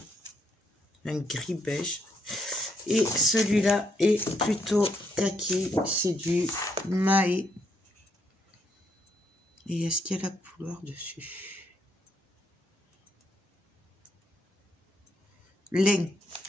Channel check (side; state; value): both; normal; correlation 0.74